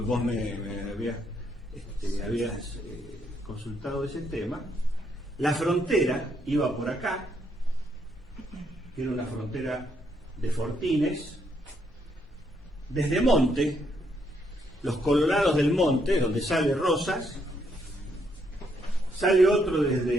vos me habías consultado ese tema. La frontera iba por acá, que era una frontera de fortines. Desde Monte, los Colorados del Monte, donde sale Rosas, sale otro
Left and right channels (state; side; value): normal; both; correlation 0.74